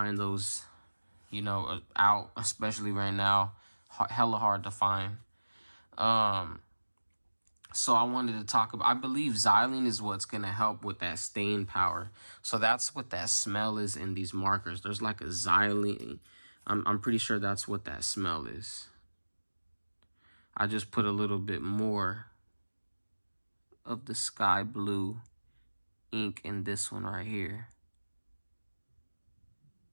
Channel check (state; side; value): inverted; both; correlation -1.00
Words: those, you know, out, especially right now. Hella hard to find. So I wanted to talk about, I believe xylene is what's going to help with that stain power. So that's what that smell is in these markers. There's like a xylene. I'm pretty sure that's what that smell is. I just put a little bit more of the sky blue ink in this one right here